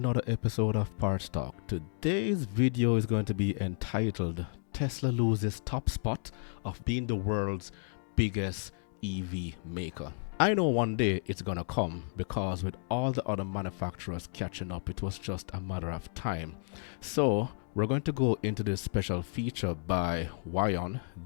episode of Parts Talk. Today's video is going to be entitled Tesla loses top spot of being the world's biggest EV maker. I know one day it's gonna come because with all the other manufacturers catching up, it was just a matter of time. So we're going to go into this special feature by Wion.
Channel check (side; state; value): right; silent; 56 dB below the other